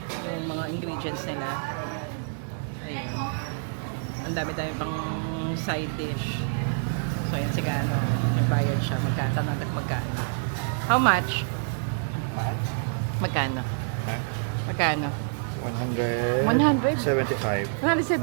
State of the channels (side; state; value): left; silent; digital silence